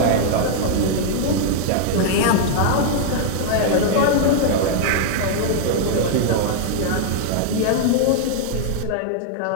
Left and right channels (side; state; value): both; different; correlation 0.00